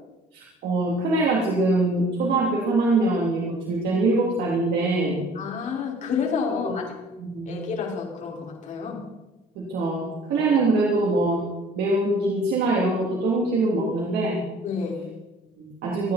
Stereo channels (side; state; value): both; normal; correlation 0.52